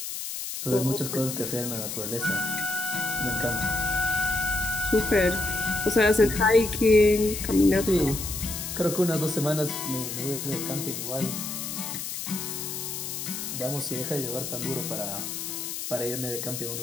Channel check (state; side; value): noise; left; hiss, 6 dB below the sound